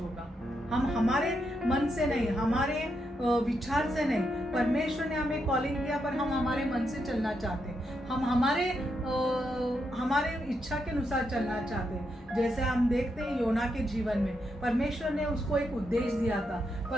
हम हमारे मन से नहीं, हमारे विचार से नहीं, परमेश्वर ने हमें कॉलिंग किया पर हम हमारे मन से चलना चाहते, हम हमारे इच्छा के अनुसार चलना चाहते। जैसे हम देखते हैं योना के जीवन में परमेश्वर ने उसको एक उद्देश्य दिया था,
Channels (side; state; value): both; normal; correlation 0.82